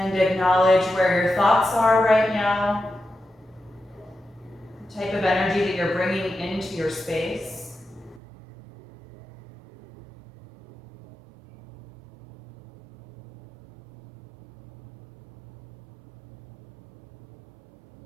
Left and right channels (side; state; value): left; drops out; at 8.2 s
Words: And acknowledge where your thoughts are right now, the type of energy that you're bringing into your space.